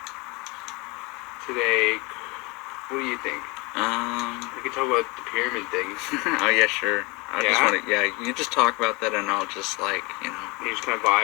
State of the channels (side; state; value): right; quieter; 26.7 dB